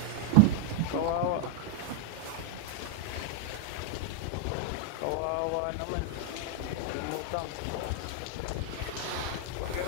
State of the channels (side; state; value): both; different; correlation 0.00